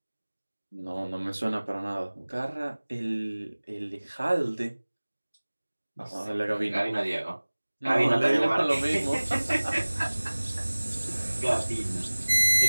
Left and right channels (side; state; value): both; inverted; correlation -1.00